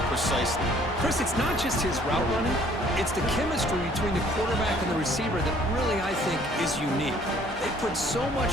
precisely? Chris, it's not just his route running. It's the chemistry between the quarterback and the receiver that really, I think, is unique. They put so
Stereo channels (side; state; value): both; normal; correlation 0.58